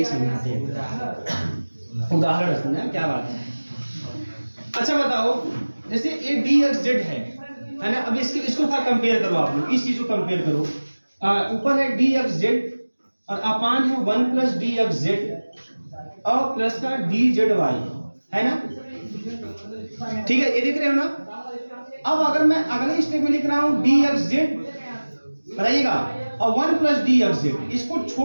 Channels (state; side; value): inverted; both; correlation -1.00